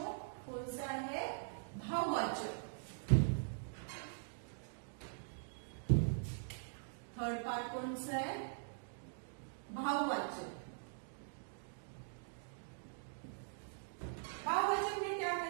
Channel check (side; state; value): left; silent; digital silence